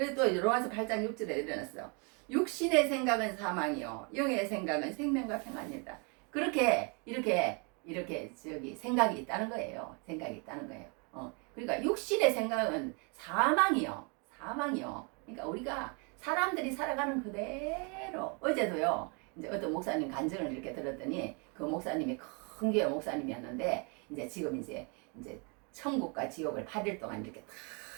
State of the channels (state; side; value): quieter; left; 34.2 dB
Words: 또 로마서 8장 6절에 일어났어. 육신의 생각은 사망이요 영의 생각은 생명과 평안이다. 그렇게 이렇게 생각이 있다는 거예요. 그러니까 육신의 생각은 사망이요. 그러니까 우리가 사람들이 살아가는 그대로 어제도요. 이제 어떤 목사님 간증을 이렇게 들었더니 그 목사님이 큰 교회 목사님이었는데 지금 이제 천국과 지옥을 8일 동안 이렇게